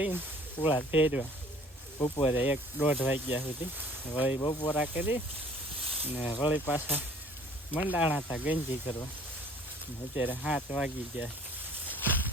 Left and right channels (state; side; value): normal; both; correlation 0.53